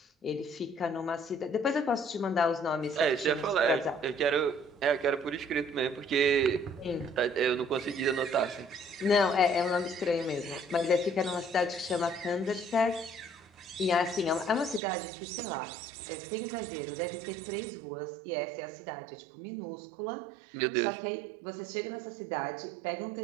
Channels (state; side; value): drops out; left; at 14.8 s